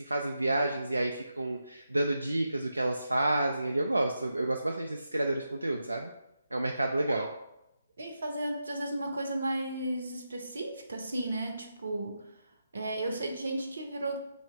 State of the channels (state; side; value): inverted; both; correlation -0.87